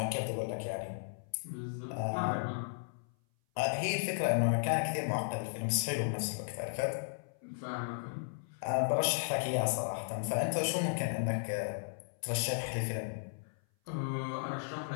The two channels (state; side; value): silent; right; 54 dB below the other